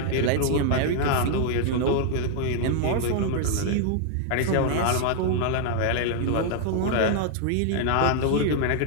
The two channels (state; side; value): different; both; correlation 0.00